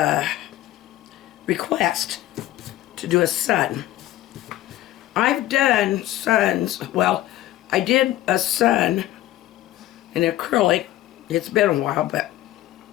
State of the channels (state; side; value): quieter; right; 14.9 dB